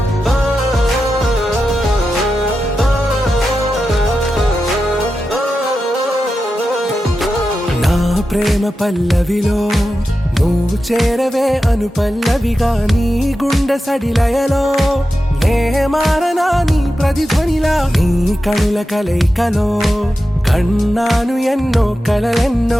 నా ప్రేమ పల్లవిలో నువ్వు చేరవే అను పల్లవిగా నీ గుండె సడిలయలో నే మారనా నీ ప్రతిధ్వనిలా నీ కనుల కలయికలో కన్నాను ఎన్నో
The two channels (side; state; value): both; normal; correlation 0.91